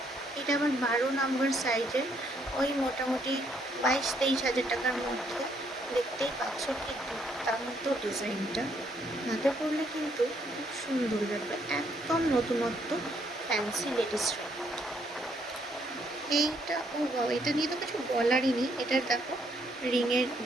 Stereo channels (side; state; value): both; normal; correlation 0.70